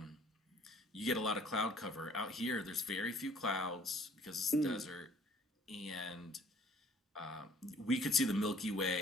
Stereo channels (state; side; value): normal; both; correlation 0.56